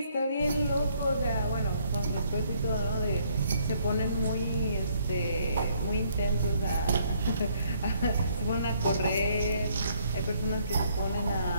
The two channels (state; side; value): inverted; both; correlation -0.67